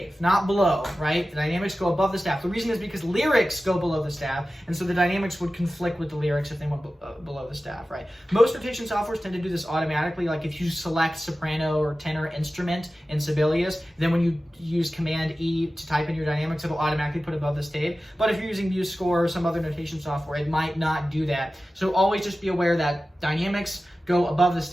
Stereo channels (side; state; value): both; normal; correlation 0.95